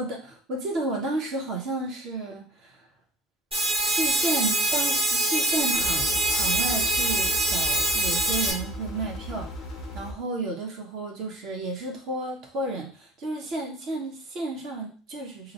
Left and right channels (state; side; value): normal; both; correlation 0.44